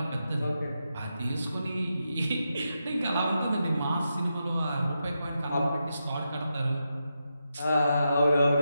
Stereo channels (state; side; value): inverted; both; correlation -0.86